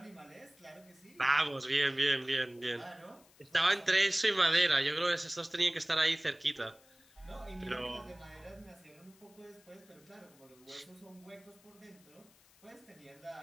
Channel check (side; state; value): left; noise; hiss, 28 dB below the sound